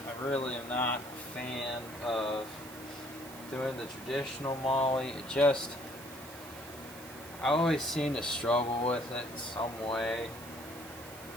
I really am not a fan of doing the traditional MOLLE. I always seem to struggle with it in some way.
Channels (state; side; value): noise; right; hiss, 16 dB below the sound